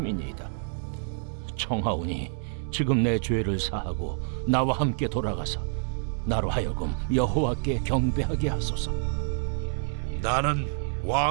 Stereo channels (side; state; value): left; silent; 60 dB below the other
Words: 청하오니 지금 내 죄를 사하고 나와 함께 돌아가서 나로 하여금 여호와께 경배하게 하소서. 나는